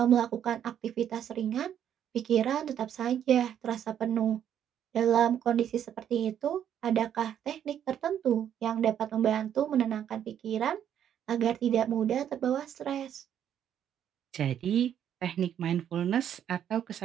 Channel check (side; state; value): left; quieter; 9.7 dB